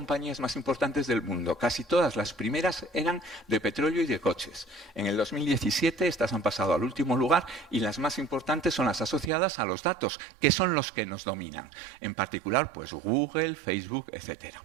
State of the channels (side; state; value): left; drops out; at 9.3 s